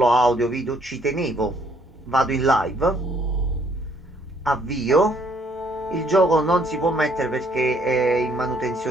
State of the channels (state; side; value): normal; both; correlation 0.65